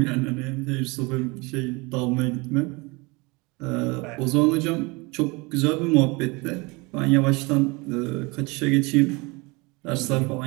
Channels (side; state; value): left; quieter; 26.3 dB